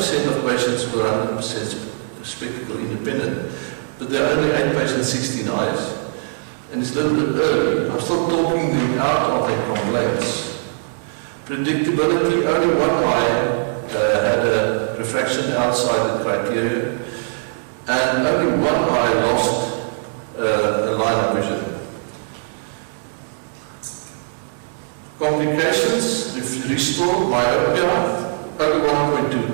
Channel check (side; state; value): left; silent; 62 dB below the other